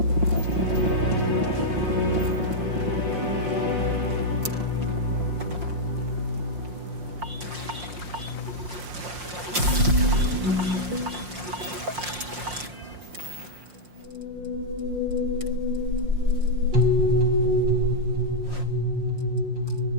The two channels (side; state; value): left; late; 5.6 ms